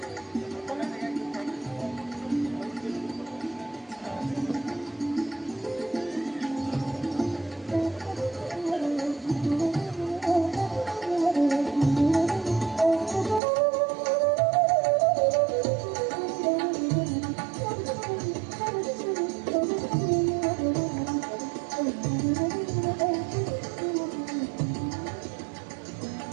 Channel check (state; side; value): drops out; left; at 13.4 s